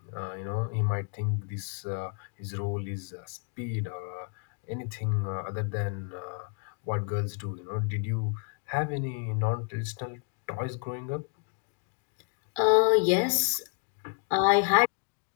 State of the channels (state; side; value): quieter; right; 37.9 dB